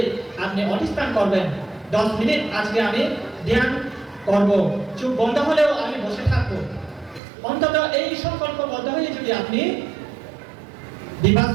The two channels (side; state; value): left; drops out; at 7.2 s